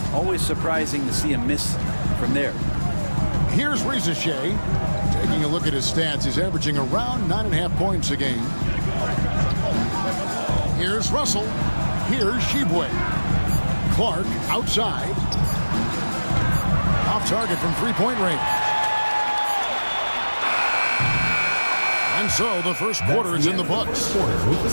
always surprising to see him miss from there. Here's Rizichet. Taking a look at his stats, he's averaging around 9.5 points a game. Here's Russell. Here's Sheboy. Clark outside. Off target from three-point range. And so the first quarter is in the books.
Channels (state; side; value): inverted; both; correlation -1.00